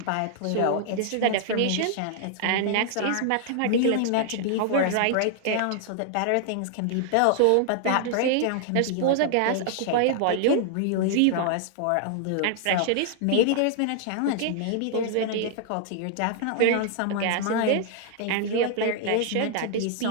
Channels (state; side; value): different; both; correlation -0.01